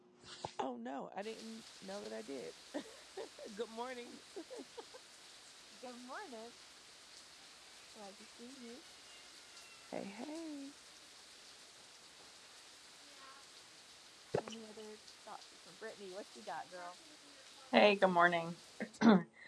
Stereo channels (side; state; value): both; identical; correlation 1.00